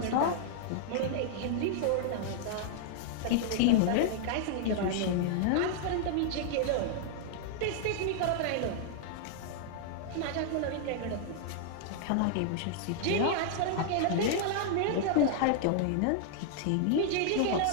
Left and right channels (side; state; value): both; different; correlation -0.01